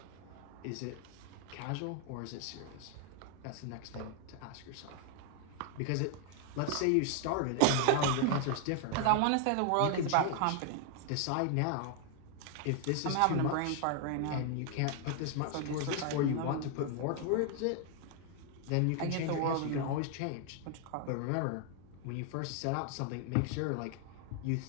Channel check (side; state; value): both; different; correlation 0.00